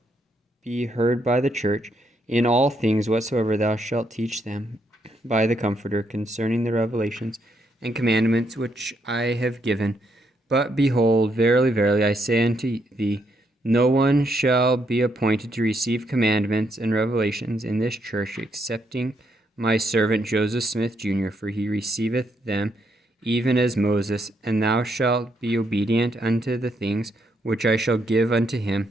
be heard by the church in all things whatsoever thou shalt teach them by the Comforter concerning the revelations and commandments which I have given. But behold, verily, verily, I say unto thee, no one shall be appointed to receive commandments and revelations in this church, excepting my servant Joseph Smith, Jr., for he receiveth them even as Moses, and thou shalt be obedient unto the things which I shall give unto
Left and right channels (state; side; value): normal; both; correlation 0.76